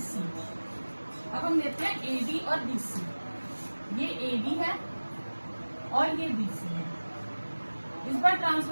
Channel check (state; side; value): inverted; both; correlation -1.00